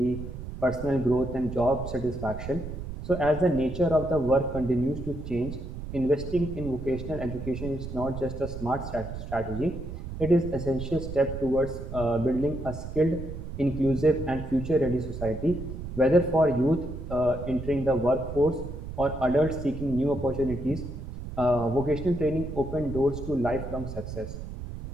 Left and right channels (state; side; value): noise; right; rumble, 8 dB below the sound